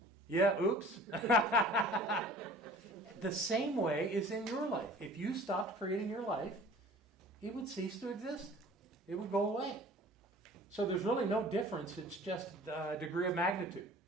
Yeah, oops. The same way is in your life. If you stopped creating your life, it would cease to exist. It would go away. So there's really no difference. It's just a degree of magnitude.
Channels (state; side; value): normal; both; correlation 0.47